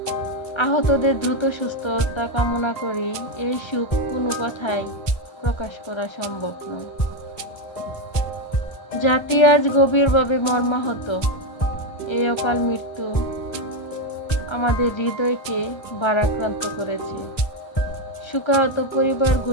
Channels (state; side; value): late; right; 1.3 ms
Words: আহতদের দ্রুত সুস্থতা কামনা করি। এই সুখ কোনো কথায় প্রকাশ করা সম্ভব নয়। জাতি আজ গভীরভাবে মর্মাহত। এই অকাল মৃত্যু আমাদের হৃদয়কে ভারাক্রান্ত করেছে। শোকাহত